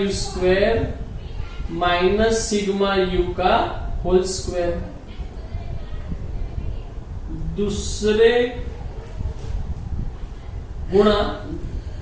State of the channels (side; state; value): both; identical; correlation 1.00